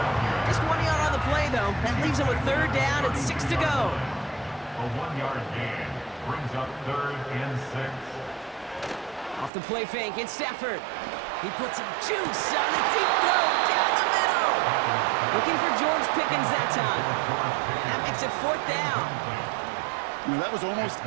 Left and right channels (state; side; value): drops out; left; at 9.5 s